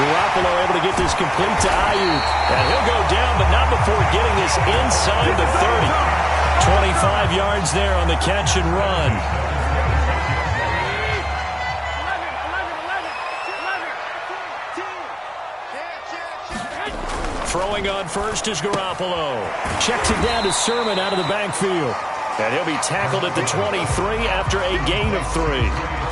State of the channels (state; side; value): identical; both; correlation 1.00